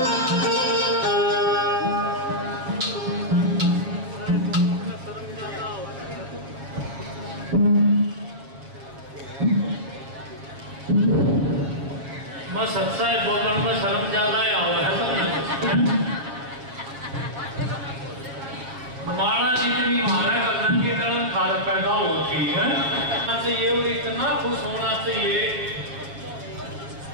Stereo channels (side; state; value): left; late; 7.5 ms